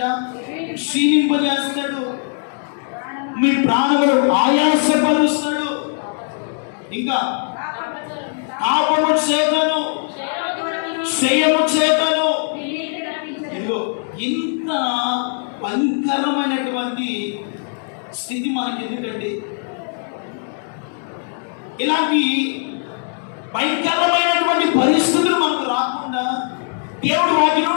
క్షీణింపజేస్తాడు, మీ ప్రాణములు ఆయాసపరుస్తాడు, ఇంకా పాపము చేతను క్షయము చేతను. ఇదిగో ఇంత భయంకరమైనటువంటి స్థితి మనకి ఎందుకండి? ఇలాంటి భయంకరమైనటువంటి పరిస్థితులు మనకు రాకుండా దేవుడు వాటి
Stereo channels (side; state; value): right; silent; 56 dB below the other